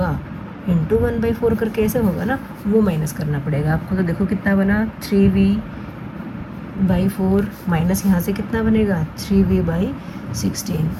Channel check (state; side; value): identical; both; correlation 1.00